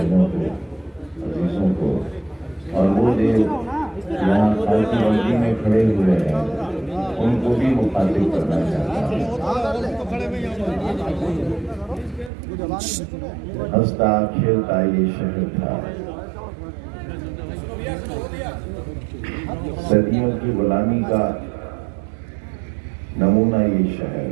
को, अजीजों को, और वो देव यहाँ खालसी मंडी में खड़े हुए हैं, उनको भी मुखातिब करना चाहता हूँ। हंसता खेलता ये शहर था, सदियों की गुलामी का नमूना ये शहर।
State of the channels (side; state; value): left; drops out; at 12.3 s